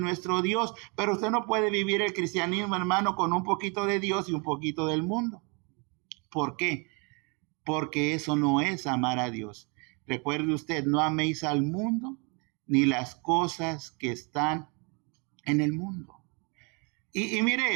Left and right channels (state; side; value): quieter; left; 32.7 dB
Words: Dios. Pero usted no puede vivir el cristianismo, hermano, con un poquito de Dios y un poquito del mundo. ¿Por qué? Porque eso no es amar a Dios. Recuerde usted, no améis al mundo ni las cosas que están en el mundo. Y